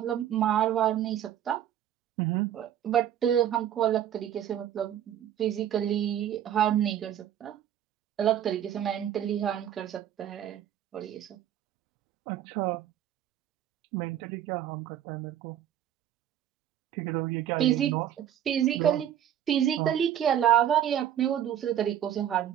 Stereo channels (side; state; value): left; quieter; 10.7 dB